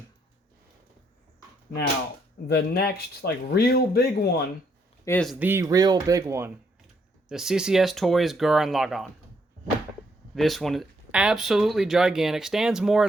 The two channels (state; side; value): normal; both; correlation 0.73